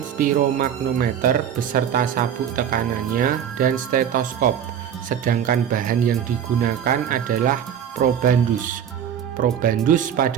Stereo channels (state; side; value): quieter; left; 9.0 dB